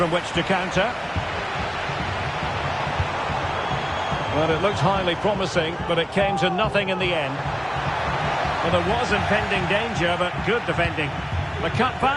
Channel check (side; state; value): both; identical; correlation 1.00